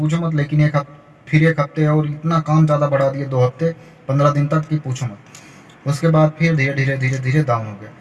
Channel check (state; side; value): identical; both; correlation 1.00